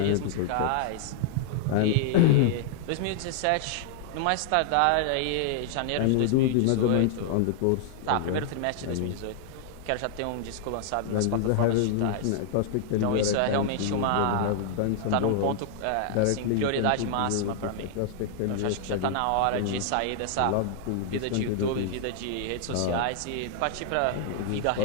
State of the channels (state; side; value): different; both; correlation -0.01